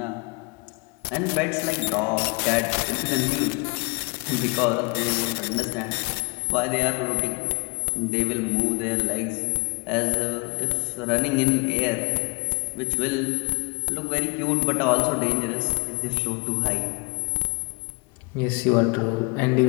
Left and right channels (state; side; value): quieter; right; 30.9 dB